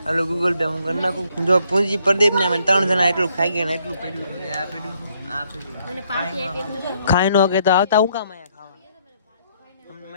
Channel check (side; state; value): both; inverted; correlation -0.70